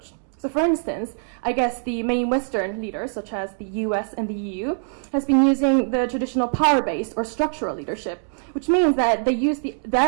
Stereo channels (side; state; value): left; silent; digital silence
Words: So for instance, I guess the main Western leaders, such as the US and the EU, has been using the traditional power-based or structural leadership, which means that they use